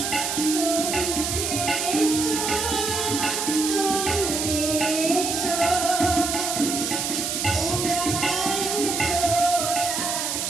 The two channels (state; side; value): noise; right; hiss, 1 dB below the sound